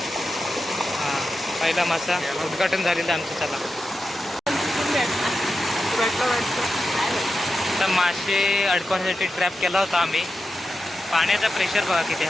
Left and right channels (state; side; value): normal; both; correlation 0.90